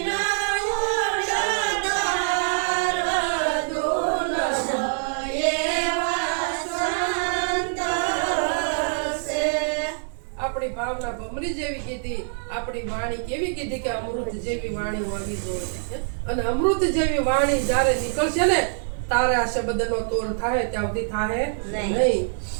આપણી ભાવના ભમરી જેવી કીધી, આપણી વાણી કેવી કીધી કે અમૃત જેવી વાણી હોવી જોઈએ. અને અમૃત જેવી વાણી જ્યારે નીકળશે ને તારે આ શબ્દનો તોલ થાય ત્યાં સુધી થાય નહીં.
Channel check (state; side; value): silent; left; digital silence